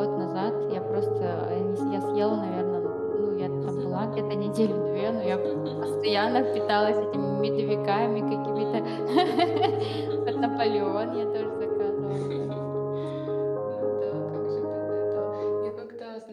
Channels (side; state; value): both; identical; correlation 1.00